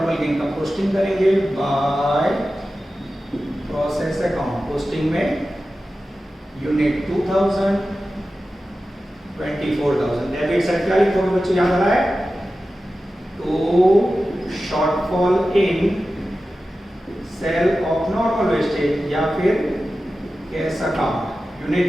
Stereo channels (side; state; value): both; normal; correlation 0.94